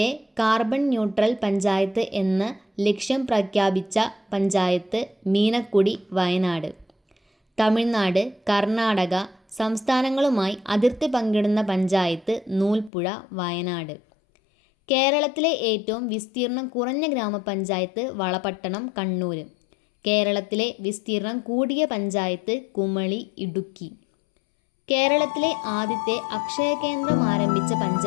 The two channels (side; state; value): right; drops out; at 12.9 s